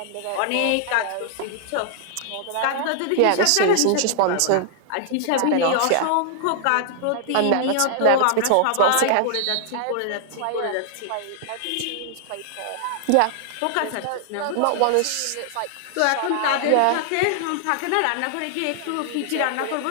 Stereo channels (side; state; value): both; different; correlation 0.00